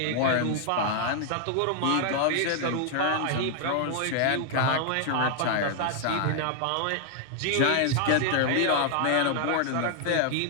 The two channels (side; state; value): both; different; correlation 0.00